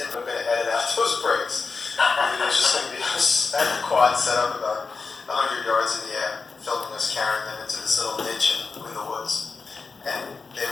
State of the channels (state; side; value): quieter; right; 4.6 dB